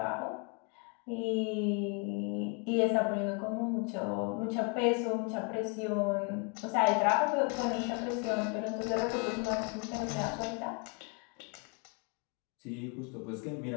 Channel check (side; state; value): right; quieter; 35.8 dB